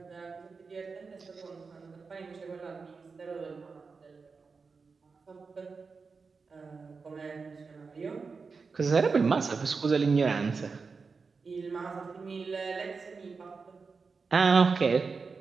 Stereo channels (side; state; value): left; quieter; 4.8 dB